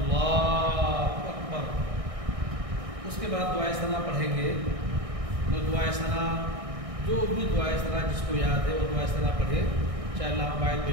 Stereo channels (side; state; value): left; late; 1.6 ms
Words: اکبر۔ اس کے بعد دعائے ثنا پڑھیں گے۔ تو دعائے ثنا جو بھی دعائے ثنا جس کو یاد ہے وہ دعائے ثنا پڑھے، چاہے اللہم باعث